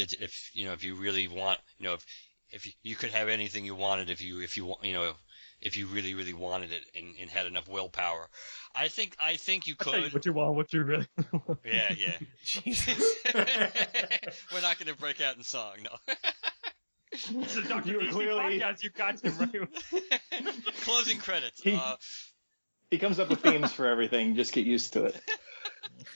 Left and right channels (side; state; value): both; inverted; correlation -1.00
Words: you really want, if you could have anything you wanted if you really, really wanted it and had enough willpower. I think you could. What you want, what you really want. Yeah. Jesus. We're not going to break out in song, no. This is Dr. You DC clearly... podcast, you got him right. Closing credits. He comes up with themes for everything. Just get used to it.